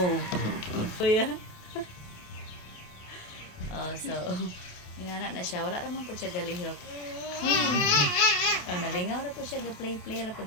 Kuya. Oh, so inana na siya, wala ra man po siya galihok. Oh, nalingaw ra po siya, ga-play ra po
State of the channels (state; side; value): late; right; 28 ms